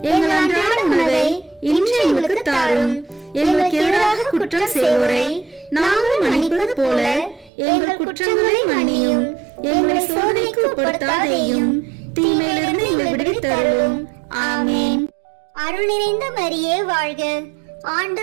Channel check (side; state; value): left; drops out; at 7.5 s